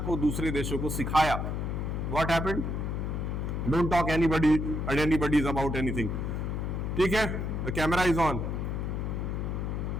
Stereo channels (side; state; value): left; noise; hum, 2 dB below the sound